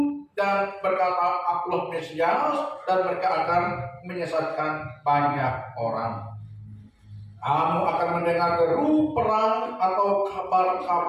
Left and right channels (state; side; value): identical; both; correlation 1.00